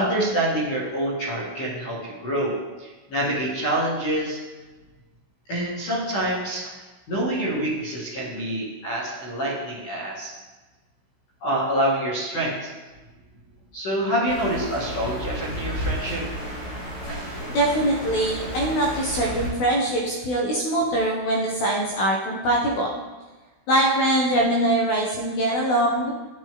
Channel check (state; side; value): late; right; 16 ms